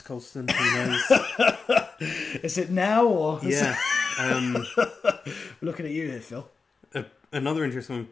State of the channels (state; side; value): quieter; right; 4.6 dB